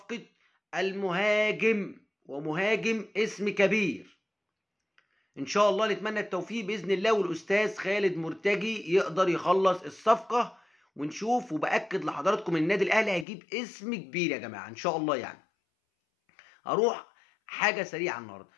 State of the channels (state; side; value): drops out; right; at 13.2 s